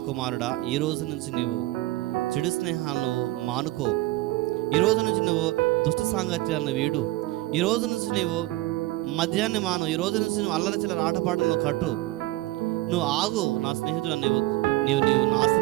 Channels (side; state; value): left; quieter; 18.5 dB